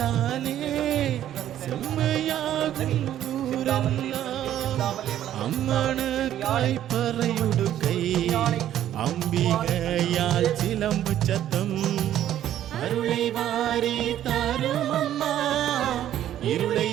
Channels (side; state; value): left; quieter; 11.7 dB